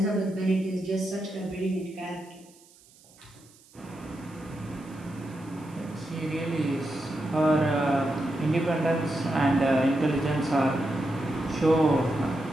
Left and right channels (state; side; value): noise; right; hiss, 27 dB below the sound